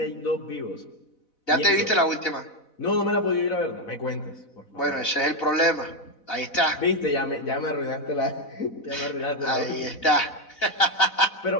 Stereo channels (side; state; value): right; late; 4.0 ms